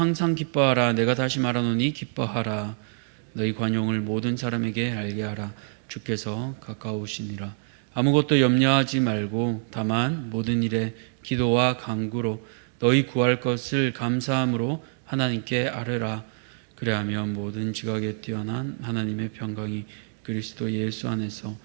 기뻐하라. 내가 다시 말하노니 기뻐하라. 너희 관용을 모든 사람에게 알게 하라. 주께서 가까우시니라. 아무것도 염려하지 말고 다만 모든 일에 기도와 간구로 너희 구할 것을 감사함으로 하나님께 아뢰라. 그래하면 모든 지각에 뛰어난 하나님의 평강이 그리스도 예수 안에서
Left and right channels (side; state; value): left; silent; 61 dB below the other